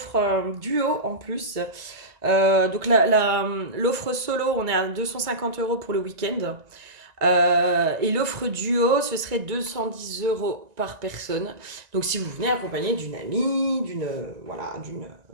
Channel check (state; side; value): late; left; 1.9 ms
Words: duo en plus. Donc l'offre solo, on est à 250 € pour le week-end. Et l'offre duo, ce serait 210 € par personne. Donc si vous venez accompagné d'une amie,